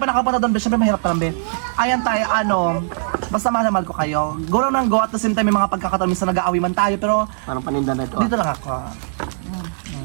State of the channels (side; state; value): left; silent; 66 dB below the other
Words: nakapunta doon, be. Siyempre mahirap pa lang, be. Ayan tayo, ano. Basta mahal na mahal ko kayo. Go lang ng go at the same time may mga pagkakataon. Minsan nag-aawi man tayo, pero Parang paninda na ito. dito lang ako.